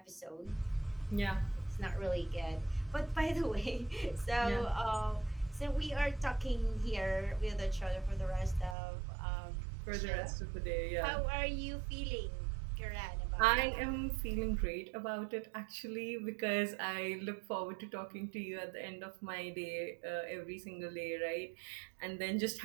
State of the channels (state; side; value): drops out; left; at 8.8 s